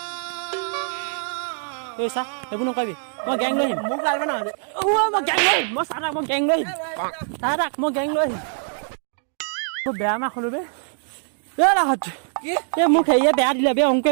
ঐ চা সেইবোৰ নকৰিবি মই গেং লৈ আহিম মই গেং লৈ আহিম মই চাহ মই গেং লৈ আহিম মই গেং লৈ আহিম মই বেয়া মাক হ'লো বে এই মোক হেৰিয়ে বেয়া দিলে বে অংকুৱে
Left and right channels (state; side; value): silent; left; 63 dB below the other